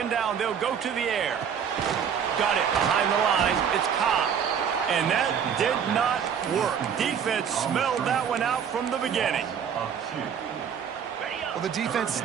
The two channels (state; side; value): quieter; left; 7.7 dB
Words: down, they'll go to the air. Got it behind the line. It's Cobb. And that did not work. Defense smelled that one out from the beginning. Well, the defense